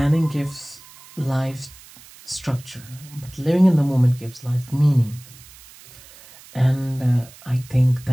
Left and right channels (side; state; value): right; noise; hiss, 22 dB below the sound